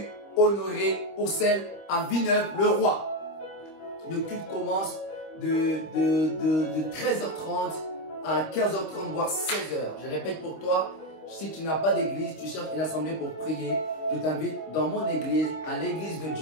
Honoré Oursel à Villeneuve-le-Roi. Le culte commence de 13h30 à 15h30, voire 16h. Je répète pour toi, si tu n'as pas d'église, tu cherches une assemblée pour prier, je t'invite dans mon église, à l'église de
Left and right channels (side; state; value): right; late; 26 ms